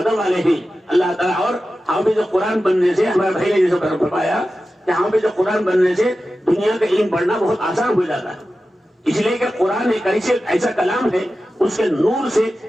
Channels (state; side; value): normal; both; correlation 0.93